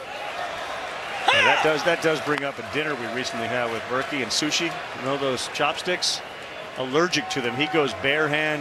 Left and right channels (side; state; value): both; identical; correlation 1.00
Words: Yeah, that does bring up a dinner we recently had with Berkey and sushi. You know those chopsticks? Allergic to them. He goes bare